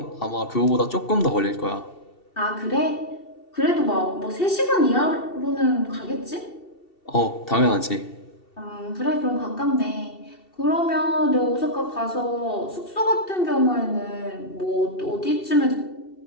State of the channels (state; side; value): late; right; 2.7 ms